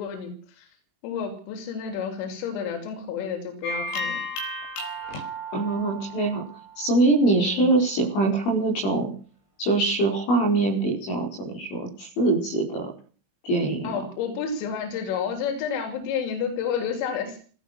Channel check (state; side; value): late; right; 21 ms